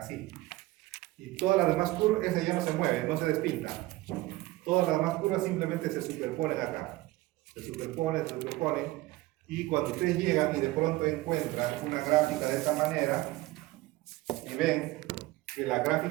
Y todas las demás curvas, esa ya no se mueve, no se despinta. Todas las demás curvas simplemente se superponen acá. Se superponen. Y cuando ustedes llegan y de pronto encuentran una gráfica de esta manera y ven que la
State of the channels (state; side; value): quieter; left; 18.9 dB